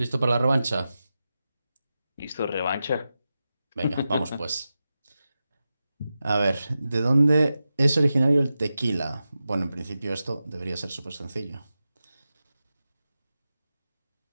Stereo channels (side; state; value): both; inverted; correlation -0.92